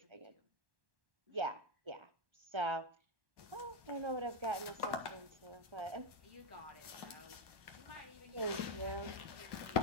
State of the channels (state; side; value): late; left; 1.1 ms